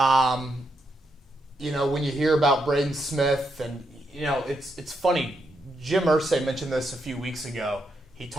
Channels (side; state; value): both; normal; correlation 0.81